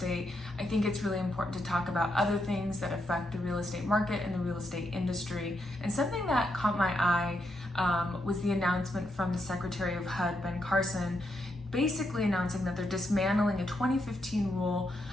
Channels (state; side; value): normal; both; correlation 0.80